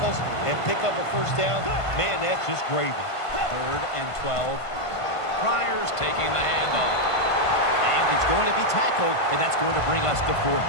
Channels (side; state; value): right; late; 1.5 ms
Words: and pick up a first down, man, that's just gravy. 3rd and 12. Pryor's taking the handoff. And he's going to be tackled, and that's going to bring us to 4th